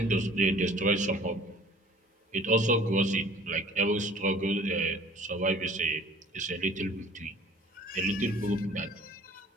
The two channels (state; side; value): normal; both; correlation 0.50